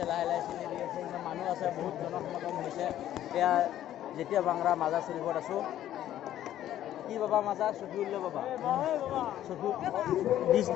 লাহে লাহে চিনি দি আছে ইমান মানুহ আছে বহুত জনসমাগম হৈছে এয়া যেতিয়া ভাংৰা মাজাৰ চুৰিফত আছোঁ কি বাবা মাজা চফিউল্লা বাবা চফি ডিছ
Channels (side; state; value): right; quieter; 12.2 dB